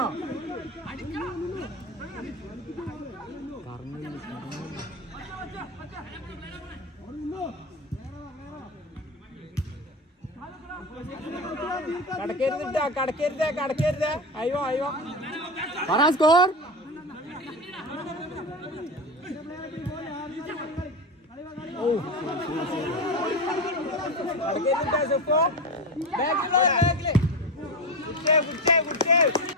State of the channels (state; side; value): normal; both; correlation 0.20